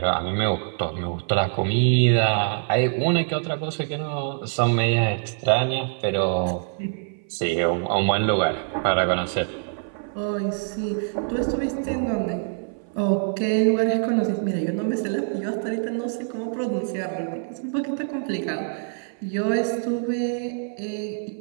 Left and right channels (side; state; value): left; silent; 57 dB below the other